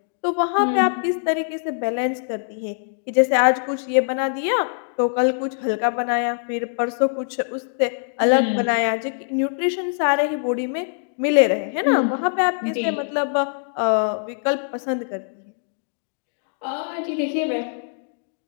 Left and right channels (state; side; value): silent; right; digital silence